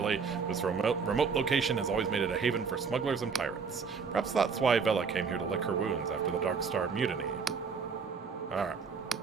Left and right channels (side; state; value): left; quieter; 5.5 dB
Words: This remote location has always made it a haven for smugglers and pirates. Perhaps that's why Vela came here to lick her wounds after the Dark Star mutiny. Alright.